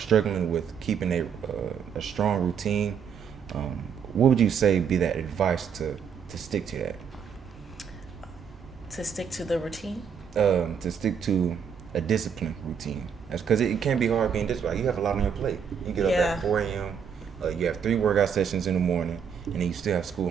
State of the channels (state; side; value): quieter; left; 7.3 dB